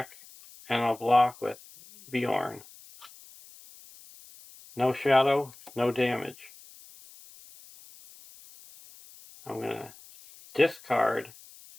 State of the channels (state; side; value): noise; left; hiss, 22 dB below the sound